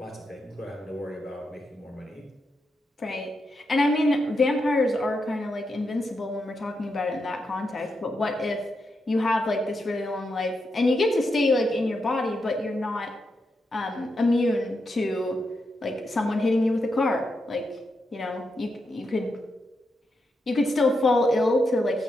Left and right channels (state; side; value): normal; both; correlation 0.85